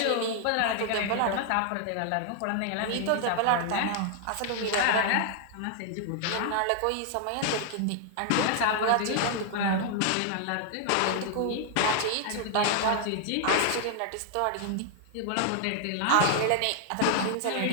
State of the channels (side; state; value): both; different; correlation 0.00